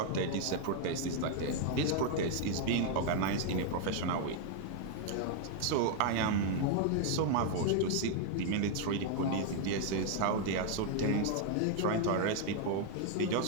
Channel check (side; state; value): both; different; correlation 0.00